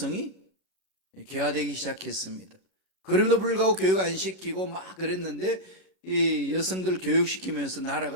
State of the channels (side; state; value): right; late; 31 ms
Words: 개화되기 시작했습니다. 그럼에도 불구하고 교육 안 시키고 막 그랬는데 이 여성들을 교육시키면서